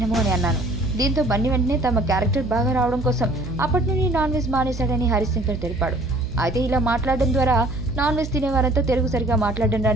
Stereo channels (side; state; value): right; noise; hum, 9 dB below the sound